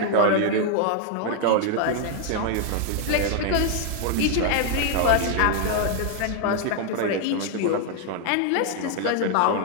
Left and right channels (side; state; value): both; different; correlation 0.00